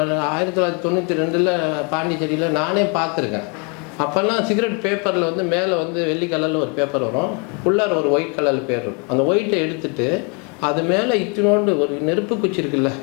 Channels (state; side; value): quieter; right; 35.3 dB